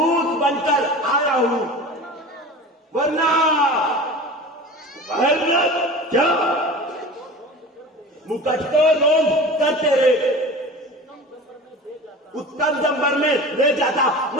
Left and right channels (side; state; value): both; normal; correlation 0.35